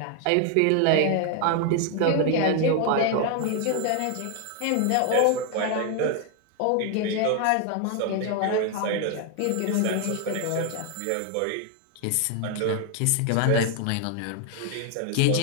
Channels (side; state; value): both; different; correlation 0.01